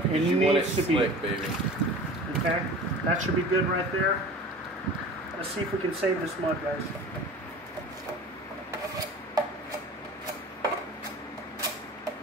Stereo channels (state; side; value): normal; both; correlation 0.39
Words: because you want it slick, baby. Okay, that should be good right there. Let's see if we can save this mud, guys.